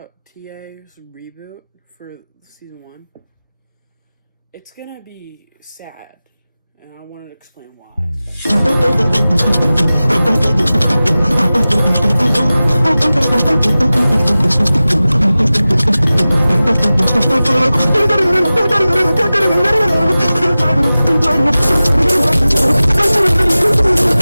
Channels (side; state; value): both; inverted; correlation -0.96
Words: TA's reboot for season 1. It's gonna be sad, and I wanted to explain why.